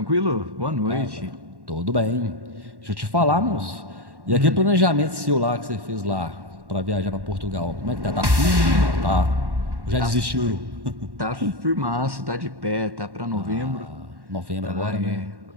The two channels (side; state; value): left; late; 1.1 ms